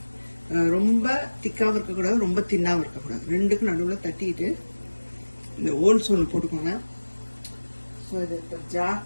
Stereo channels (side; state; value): both; inverted; correlation -1.00